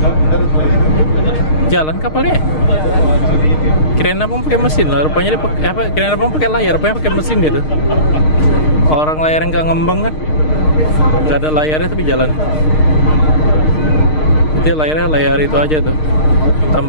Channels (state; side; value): late; right; 6.5 ms